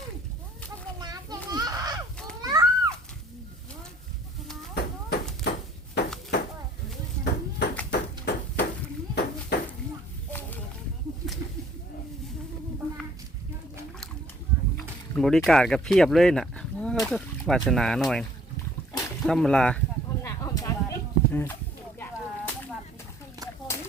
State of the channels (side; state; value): both; normal; correlation 0.58